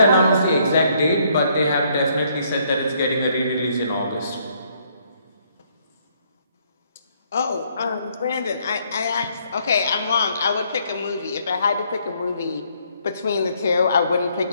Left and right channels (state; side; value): inverted; both; correlation -0.69